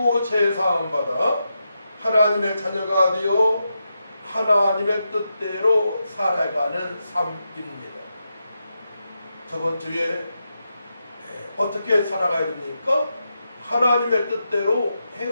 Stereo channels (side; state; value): both; inverted; correlation -0.86